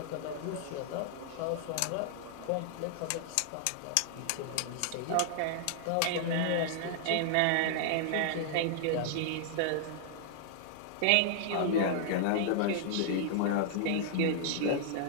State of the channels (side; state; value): both; different; correlation -0.01